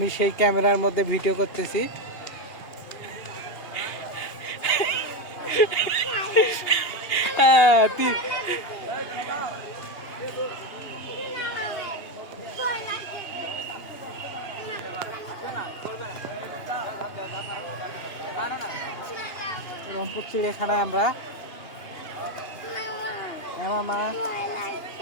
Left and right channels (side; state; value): right; late; 2.8 ms